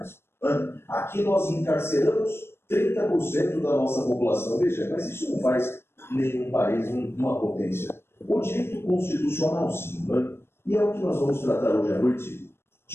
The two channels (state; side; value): late; right; 0.12 ms